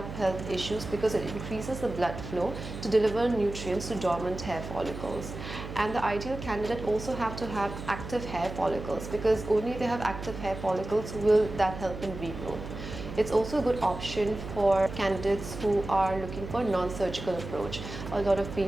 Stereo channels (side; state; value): right; noise; hum, 9 dB below the sound